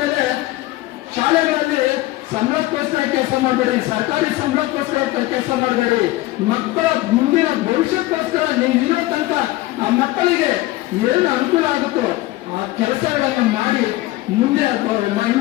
ಮೇಲೆ ಶಾಲೆಗಳಲ್ಲಿ ಸಂಬಳಕ್ಕೋಸ್ಕರ ಕೆಲಸ ಮಾಡಬೇಡಿ, ಸರ್ಕಾರಿ ಸಂಬಳಕ್ಕೋಸ್ಕರ ಕೆಲಸ ಮಾಡಬೇಡಿ. ಮಕ್ಕಳ ಮುಂದಿನ ಭವಿಷ್ಯಕ್ಕೋಸ್ಕರ ನೀವು ಇರೋ ತನಕ ಆ ಮಕ್ಕಳಿಗೆ ಏನು ಅನುಕೂಲ ಆಗುತ್ತೋ ಆ ಕೆಲಸಗಳನ್ನು ಮಾಡಿ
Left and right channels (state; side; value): quieter; right; 17.9 dB